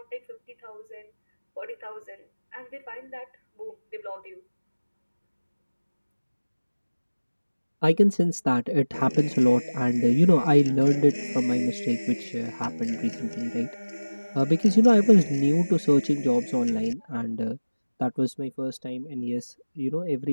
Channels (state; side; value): inverted; both; correlation -1.00